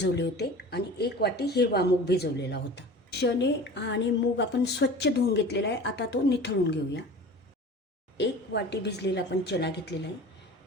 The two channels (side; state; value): both; normal; correlation 0.38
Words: होते आणि 1 वाटी हिरवा मूग भिजवलेला होता. चणे आणि मूग आपण स्वच्छ धुवून घेतलेला आहे. आता तो निथळून घेऊया. 1 वाटी भिजलेला आपण चणा घेतलेला आहे.